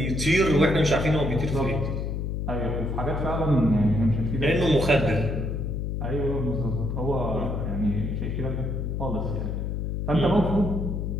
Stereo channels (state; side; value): noise; left; hum, 2 dB below the sound